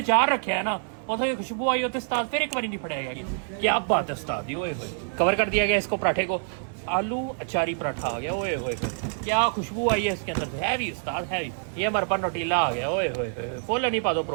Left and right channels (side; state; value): left; silent; digital silence